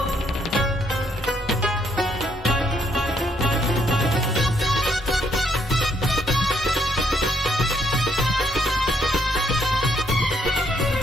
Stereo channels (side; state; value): both; normal; correlation 0.72